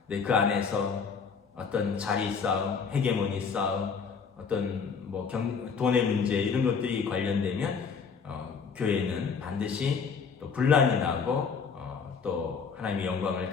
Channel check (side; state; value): right; quieter; 5.8 dB